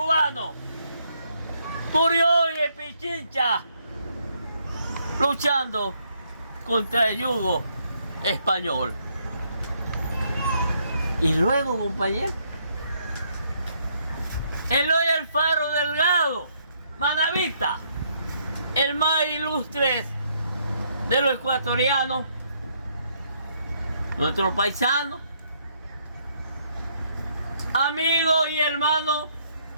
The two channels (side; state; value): both; inverted; correlation -0.71